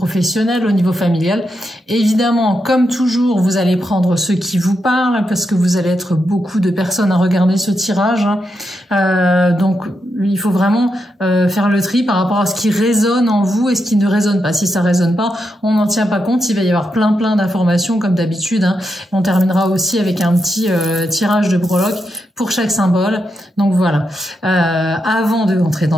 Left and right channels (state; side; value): normal; both; correlation 0.84